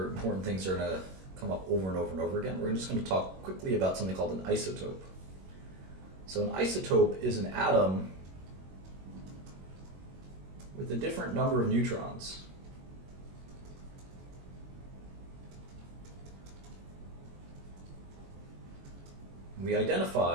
things that are going to come up over and over and over again. We're just going to talk quickly about something called an isotope. So an isotope is an atom with a different number of neutrons. We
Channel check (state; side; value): late; left; 21 ms